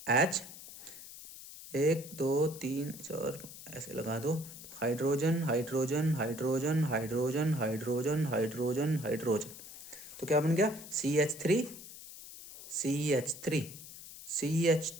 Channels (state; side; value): noise; left; hiss, 14 dB below the sound